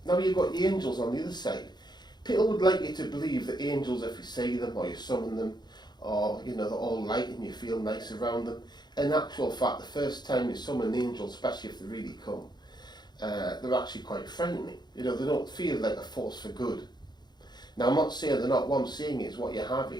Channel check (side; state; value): right; late; 0.21 ms